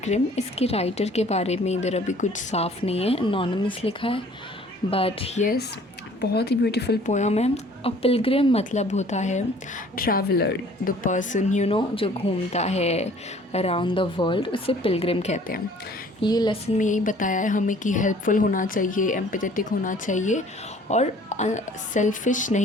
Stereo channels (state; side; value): normal; both; correlation 0.54